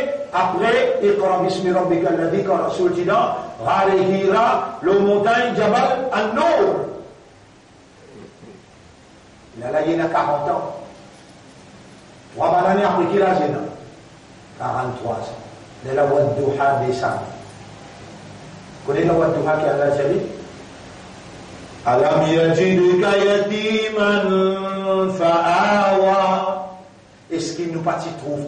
après, Iqra bismi rabbika alladhi quand Rasoul dit là, Ghar Hira, le montagne Jabal An-Nur. Là, il y a 40 ans. 3 années après qu'il a 43 ans. De la Wadduha descend. Vous connaissez la Wadduha qui a la Jali? Alam yajidka yatiman fa'awa. Est-ce qu'il nous partit trouve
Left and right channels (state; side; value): identical; both; correlation 1.00